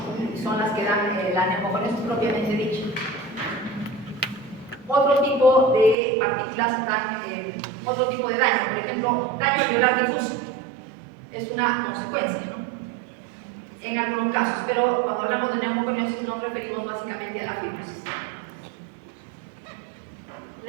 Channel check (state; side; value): drops out; left; at 6.0 s